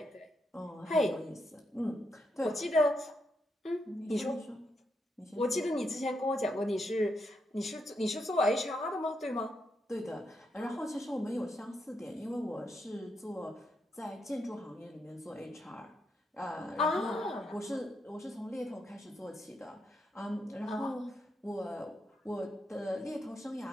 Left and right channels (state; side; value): normal; both; correlation 0.81